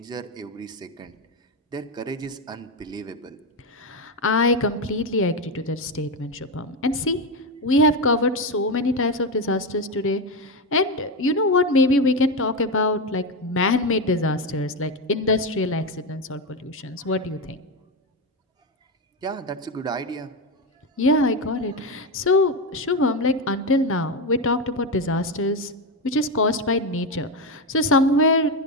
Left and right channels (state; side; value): normal; both; correlation 0.12